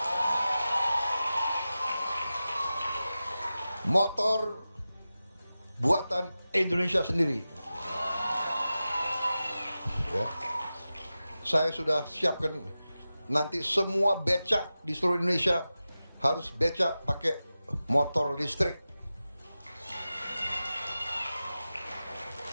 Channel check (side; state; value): both; inverted; correlation -0.94